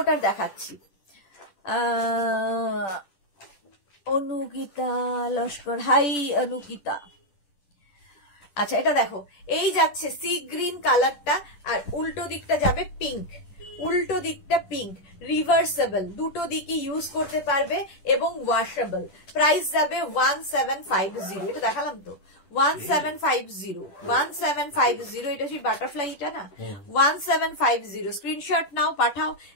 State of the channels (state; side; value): late; right; 10 ms